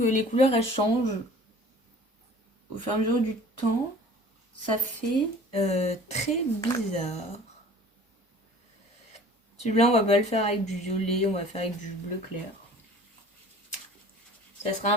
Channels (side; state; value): both; normal; correlation 0.47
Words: les couleurs elles changent au fur et à mesure du temps. Ça fait très bizarre. Celui-là, on va pas le faire avec du violet, on va faire avec du bleu clair. Ça sera un